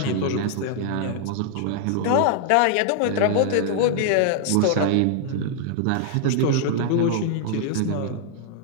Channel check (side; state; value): both; different; correlation 0.00